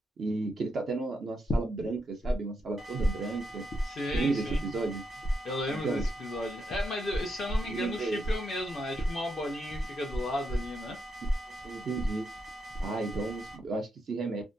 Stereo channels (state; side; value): normal; both; correlation 0.82